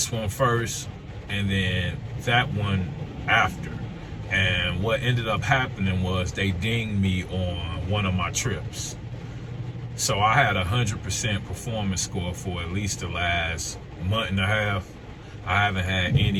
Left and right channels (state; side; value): identical; both; correlation 1.00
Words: one first and then that one after. And what ended up happening was they dinged me on one of my trips. So I had 100% performance score for at least the last month and a half. I haven't had